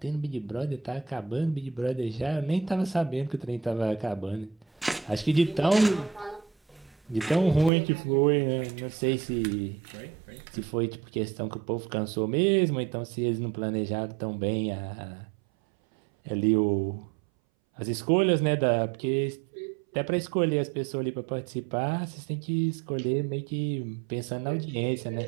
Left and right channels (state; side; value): drops out; left; at 7.7 s